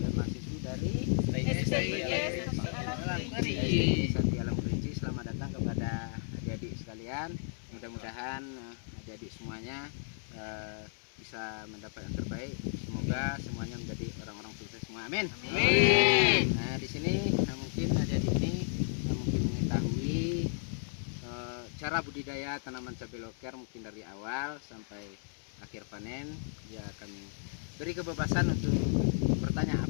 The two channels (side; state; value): right; silent; digital silence